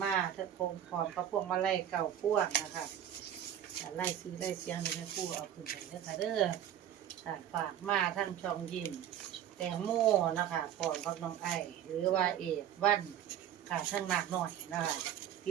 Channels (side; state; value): left; quieter; 10.5 dB